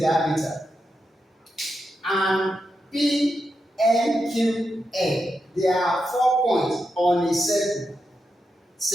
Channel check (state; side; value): normal; both; correlation 0.86